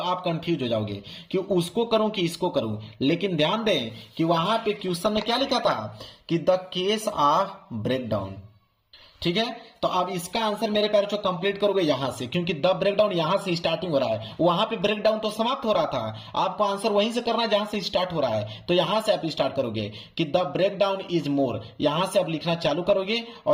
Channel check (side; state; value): both; identical; correlation 1.00